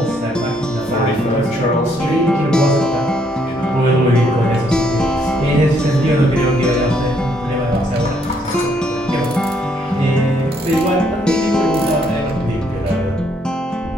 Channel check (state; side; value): normal; both; correlation 0.70